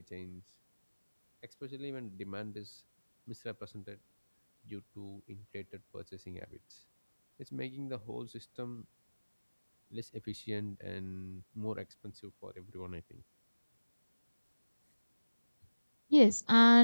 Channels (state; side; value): inverted; both; correlation -1.00